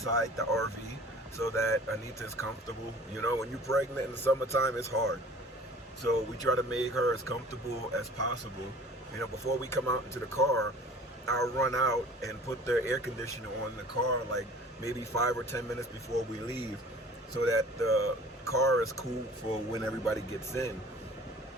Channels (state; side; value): normal; both; correlation 0.46